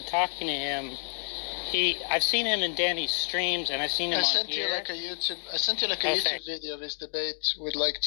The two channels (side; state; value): right; silent; 57 dB below the other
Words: talking to him. I've seen him in Danny's streams, and I've seen him on here. I sent you like a YouTube video of his debate with like